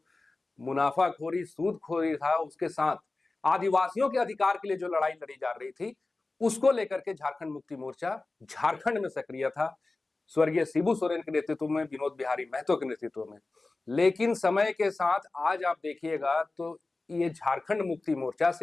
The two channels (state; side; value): quieter; right; 3.3 dB